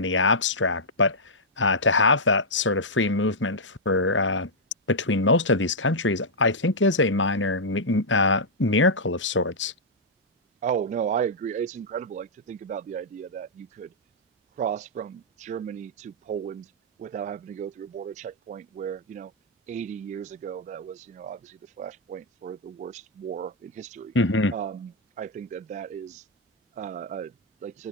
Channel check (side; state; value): both; normal; correlation -0.09